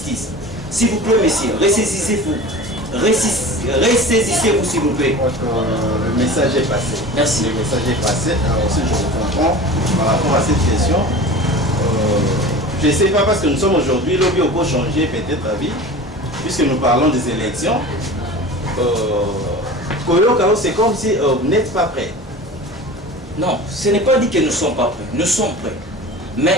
S'il vous plaît, messieurs, ressaisissez-vous. Ressaisissez-vous, s'il vous plaît. Le message est passé. Merci. Le message est passé. Alors aussi, je vous comprends par rapport à cette question. Je ne sais pas, parce que nous sommes aujourd'hui, lobby au beau changer peut-être la vie, puisque nous parlons des élections. C'est comme si vous n'êtes pas prêts. Non, ce n'est pas dit que nous ne sommes pas prêts. Nous sommes prêts.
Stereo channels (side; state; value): both; normal; correlation 0.36